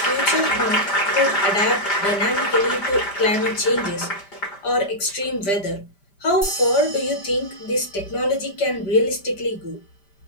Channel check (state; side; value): late; right; 5.1 ms